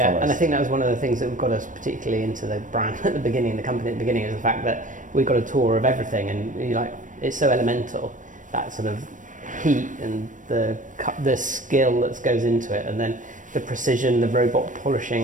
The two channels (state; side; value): late; left; 0.37 ms